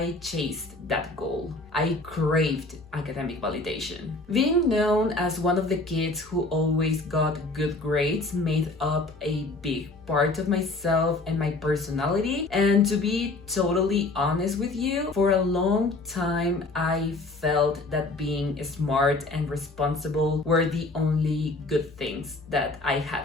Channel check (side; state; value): right; quieter; 3.1 dB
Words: chased that goal. I craved academic validation. Being known as one of the kids who always got good grades made up a big part of myself and my personality. And to be totally honest with you, for a long time I felt that being smart and responsible were the only good things that I